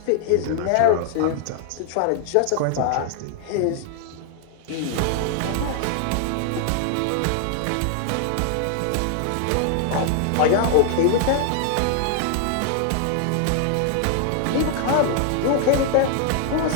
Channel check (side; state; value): both; different; correlation 0.00